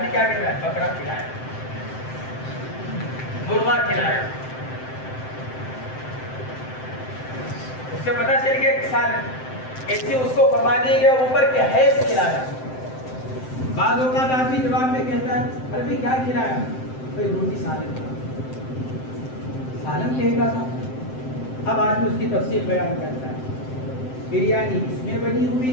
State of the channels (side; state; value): right; late; 7.7 ms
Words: کیا کہتا ہے؟ بکرا کھلایا، مرغا کھلایا. اس سے پتہ چل گیا کہ سالن. ایسے اس کو فرما دیا گیا اوپر کہ حیض کھلایا. بعض اوقات آدمی جواب میں کہتا ہے ارے بھائی کیا کھلایا؟ بھائی روٹی سالن تھا. سالن کہے گا تھا. اب آدمی اس کی تفصیل بیان کرتا ہے. بریانی اس میں بنی